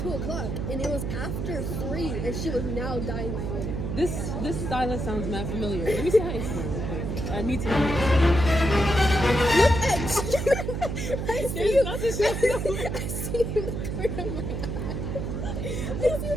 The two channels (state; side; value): noise; right; hum, 3 dB below the sound